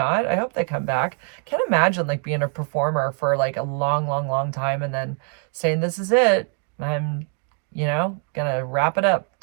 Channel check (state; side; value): quieter; left; 40.0 dB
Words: I hope they come back. Can't imagine like being a performer for like a long, long, long time and then saying, this is it. I'm, gonna wrap it up,